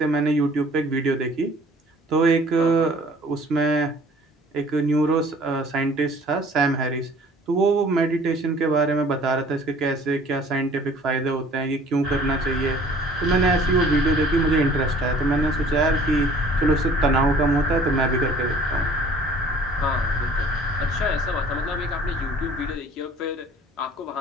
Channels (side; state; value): both; normal; correlation 0.52